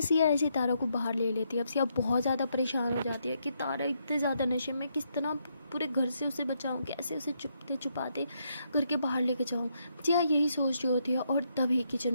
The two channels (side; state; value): both; inverted; correlation -0.77